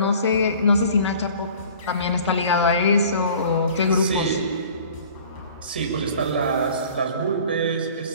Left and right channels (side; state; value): both; inverted; correlation -0.48